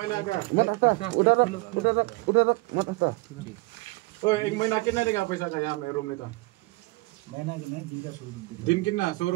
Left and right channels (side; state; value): left; quieter; 23.9 dB